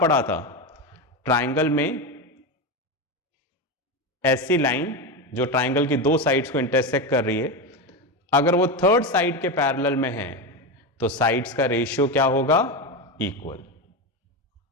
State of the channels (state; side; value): normal; both; correlation 0.16